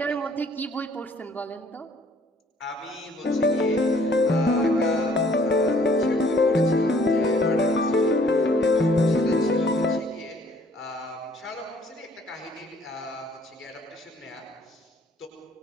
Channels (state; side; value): normal; both; correlation 0.59